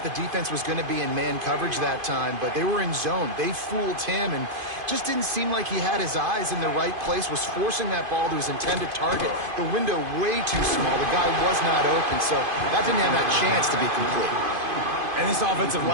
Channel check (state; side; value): late; left; 2.5 ms